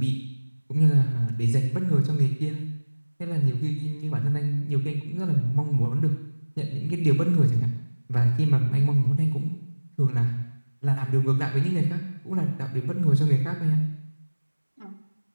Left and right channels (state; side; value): inverted; both; correlation -1.00